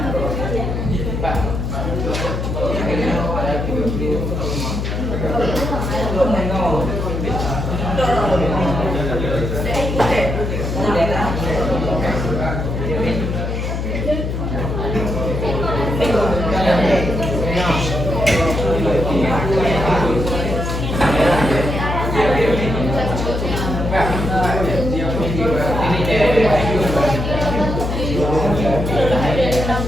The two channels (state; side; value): noise; left; hum, 2 dB below the sound